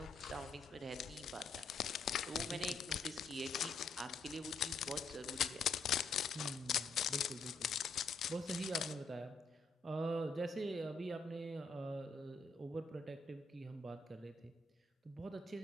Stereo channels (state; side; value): quieter; right; 3.6 dB